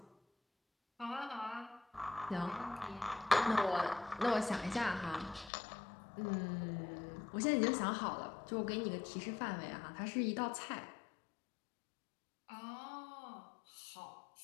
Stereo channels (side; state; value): right; drops out; at 5.5 s